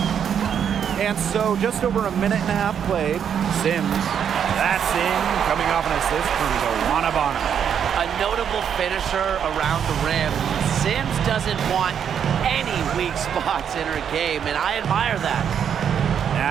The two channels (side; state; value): left; quieter; 8.2 dB